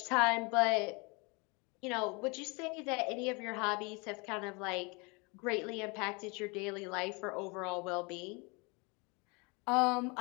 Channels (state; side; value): quieter; right; 29.5 dB